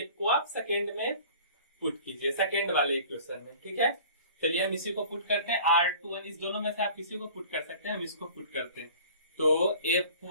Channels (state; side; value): inverted; both; correlation -0.46